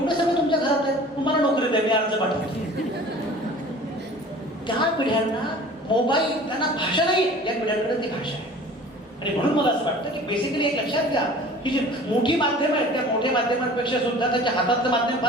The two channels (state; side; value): normal; both; correlation 0.44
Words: सगळं तुमच्या घरात आहे, तुम्हाला नोकरी द्या, मी अर्ज पाठवतो. त्या पिढ्यांना मोबाईल, त्यांना भाषा नाही, या पिढ्यांकडे ती भाषा आहे. आणि म्हणून मला असं वाटतं की बेसिकली एक लक्षात घ्या की जी मोठी माध्यमं आहेत त्या मोठ्या माध्यमांपेक्षा सुद्धा त्याच्या हातातलं माध्यम